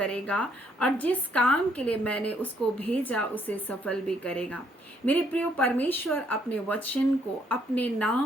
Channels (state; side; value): normal; both; correlation 0.69